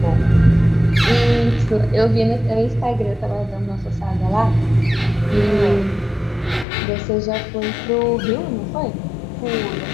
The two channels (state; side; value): drops out; right; at 6.7 s